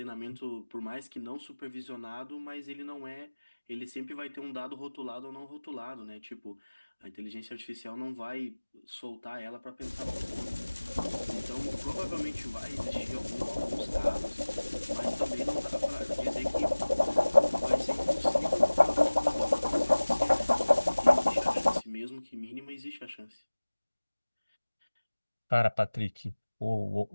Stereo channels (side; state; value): both; inverted; correlation -1.00